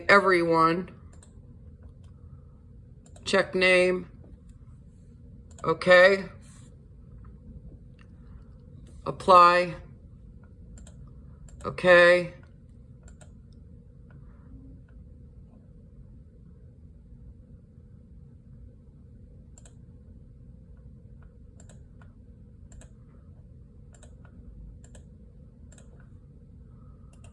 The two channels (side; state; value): both; identical; correlation 1.00